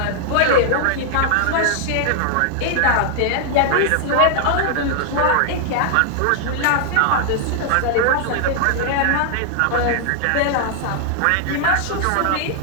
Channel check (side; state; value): both; different; correlation 0.00